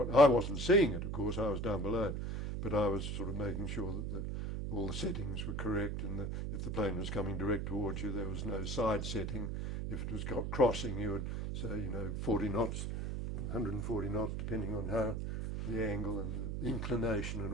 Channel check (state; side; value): noise; right; hum, 2 dB below the sound